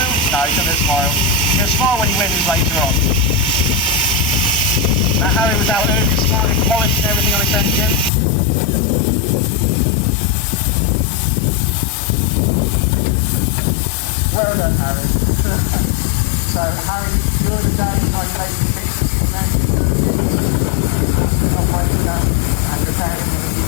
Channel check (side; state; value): right; drops out; at 8.1 s